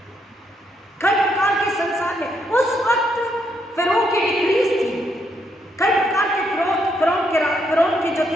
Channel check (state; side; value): normal; both; correlation 0.76